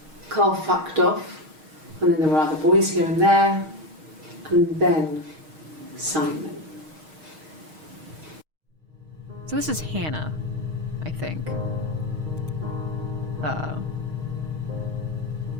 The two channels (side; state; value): left; late; 6.4 ms